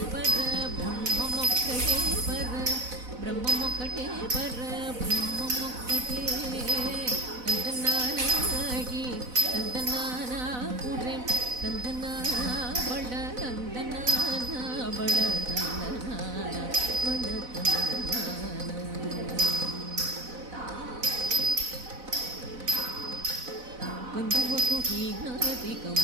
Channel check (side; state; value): left; late; 4.0 ms